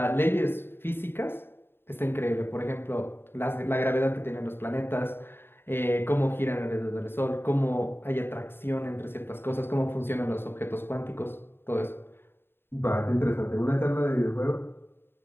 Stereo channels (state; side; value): late; right; 0.11 ms